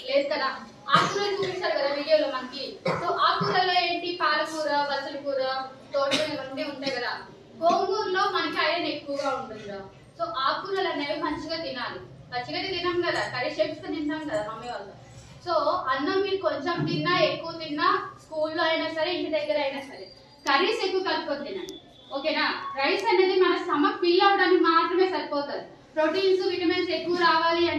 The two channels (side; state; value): both; identical; correlation 1.00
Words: లేదు కదా. ఆకుకూరలు చూపిస్తారు కదా వీడియోలో మనకి. సో ఆకుకూరలో ఏంటి పాలకూర, బచ్చల కూర, తోటకూర ఇవన్నీ ఉంటాయి కదా. గోంగూరలో మనకి ఐరన్ ఎక్కువగా ఉంటుంది. సో ఆకుకూరలు అనేవి మంచిగా తినాలి. పచ్చిగా తినాం కదా, కర్రీ చేసుకుని తింటాం కదా మమ్మీ వాళ్ళు. సో అన్నం మీరు కొంచెం తిన్నా ఎక్కువ తిన్నా స్కూల్లో అయినా సరే ఇంటి దగ్గర అయినా సరే కర్రీస్ ఎక్కువ కలుపుకొని తినండి. ఓకేనా? రైస్ అనేది మన స్టమక్ ఫిల్ అవడానికి మాత్రమే సరిపోతుంది. ప్రోటీన్స్ విటమిన్స్ ఎక్కువ రావాలి